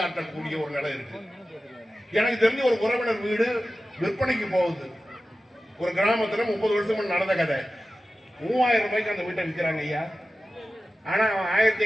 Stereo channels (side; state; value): both; normal; correlation 0.95